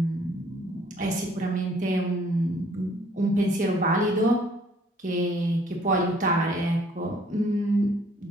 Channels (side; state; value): both; normal; correlation 0.60